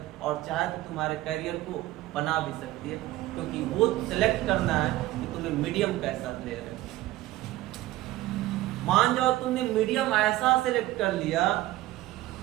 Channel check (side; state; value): left; quieter; 16.4 dB